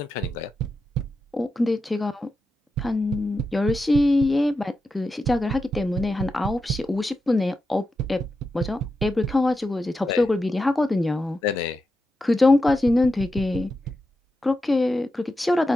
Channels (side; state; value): both; normal; correlation 0.89